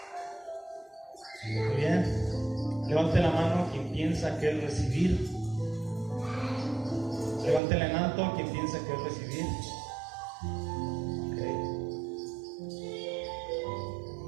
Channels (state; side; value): drops out; left; at 7.6 s